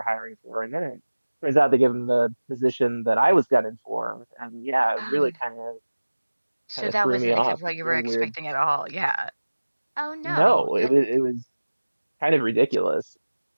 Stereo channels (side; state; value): both; inverted; correlation -1.00